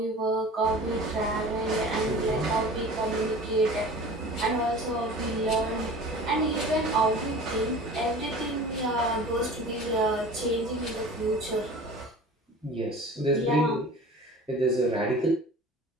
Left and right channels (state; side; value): normal; both; correlation 0.40